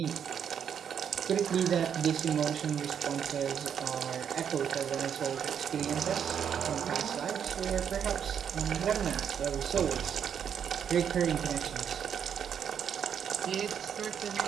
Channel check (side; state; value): left; quieter; 8.1 dB